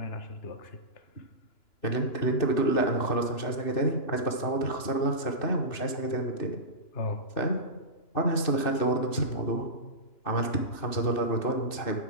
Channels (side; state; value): right; late; 2.6 ms